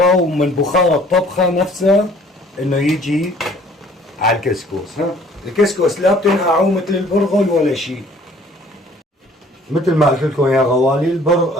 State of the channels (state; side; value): normal; both; correlation 0.55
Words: ومن بخار الطبخه نفسها انه يجي على الكسكس. ها الكسكس لا بتنقعوا مثل البرغل ولا شيء. مثل ما قلت لكم يا غوالي،